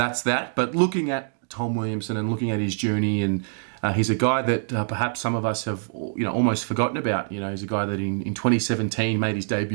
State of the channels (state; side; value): silent; left; digital silence